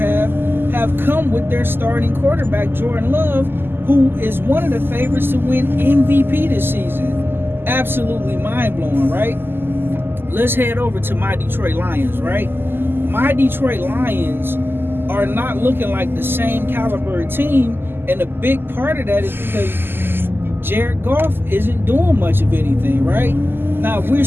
come with their starting quarterback, Jordan Love, who is one of the favorites to win MVP this season. Absolutely mind-blowing, right? Let's head over to my Detroit Lions, right? My Detroit Lions are not looking like the same caliber team, and a big part of that is because Jared Goff isn't doing much of anything, right? Now, we're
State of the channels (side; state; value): left; late; 0.10 ms